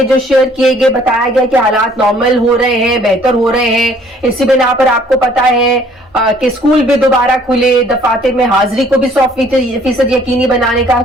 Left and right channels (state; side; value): normal; both; correlation 0.59